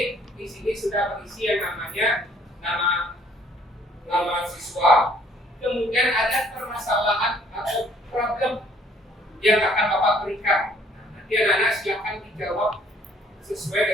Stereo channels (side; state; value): both; normal; correlation 0.60